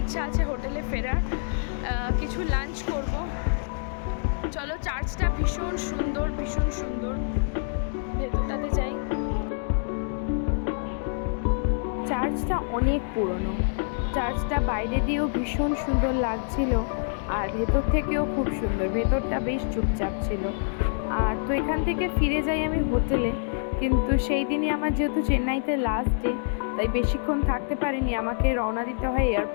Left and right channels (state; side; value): silent; right; digital silence